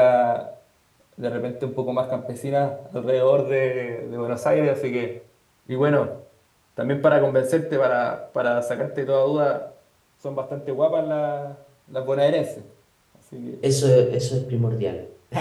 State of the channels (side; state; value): both; identical; correlation 1.00